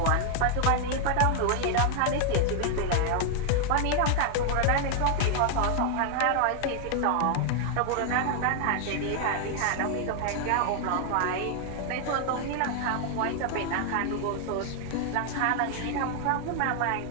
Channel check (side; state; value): both; different; correlation 0.00